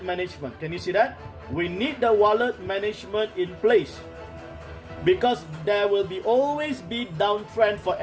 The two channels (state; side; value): identical; both; correlation 1.00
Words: management. Can you see that? We need the wallet management in place, because there will always be downtrend for